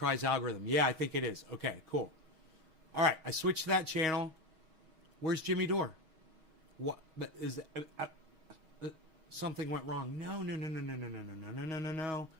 algorithm. Yeah, I think it is. Okay, cool. All right, I switched to that channel. Where's Jimmy Dore? What is something went wrong? No.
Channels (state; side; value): late; left; 6.3 ms